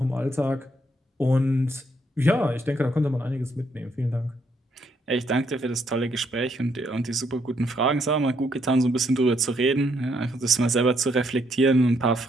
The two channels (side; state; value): both; normal; correlation 0.73